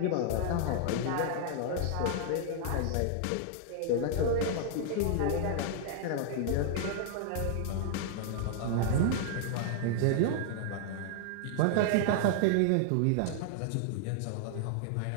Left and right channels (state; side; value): different; both; correlation 0.00